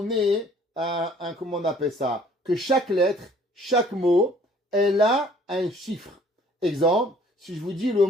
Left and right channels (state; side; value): normal; both; correlation 0.56